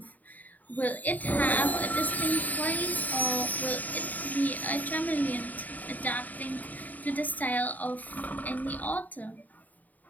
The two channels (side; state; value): right; late; 0.079 ms